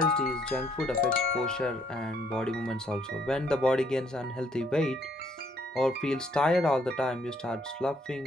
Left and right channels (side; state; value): both; normal; correlation 0.68